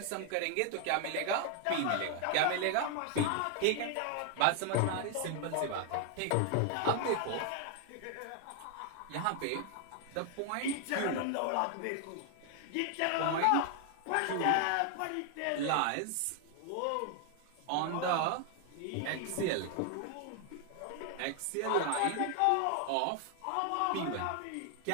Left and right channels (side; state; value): both; different; correlation 0.00